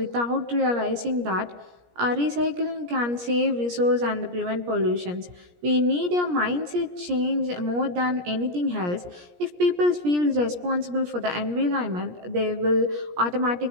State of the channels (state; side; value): late; left; 17 ms